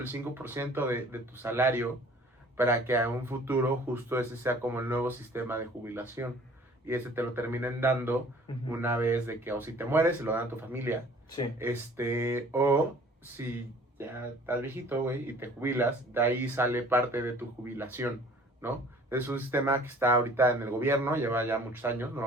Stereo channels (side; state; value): both; normal; correlation 0.51